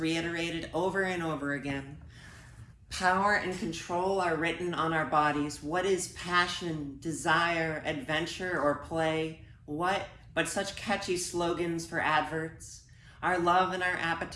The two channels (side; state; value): both; identical; correlation 1.00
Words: over and over again. Power and control are written on our bodies. What is passion, desire, adventure, or play? What but such catchy slogans for adverts? Our love and our